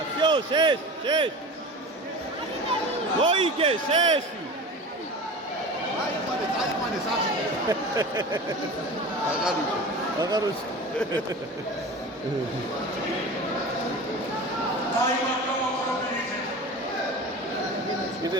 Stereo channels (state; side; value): normal; both; correlation 0.34